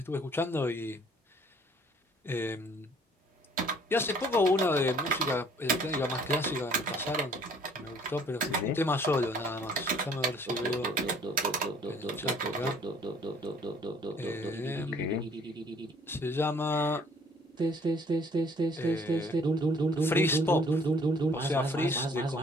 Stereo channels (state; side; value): normal; both; correlation 0.58